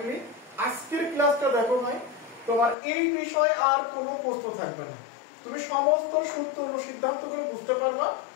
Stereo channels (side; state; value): right; drops out; at 2.8 s